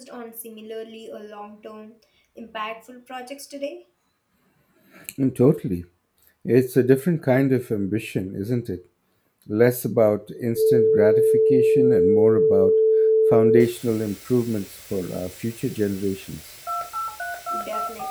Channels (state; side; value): identical; both; correlation 1.00